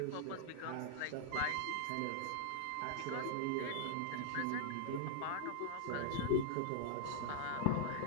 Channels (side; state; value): both; different; correlation -0.01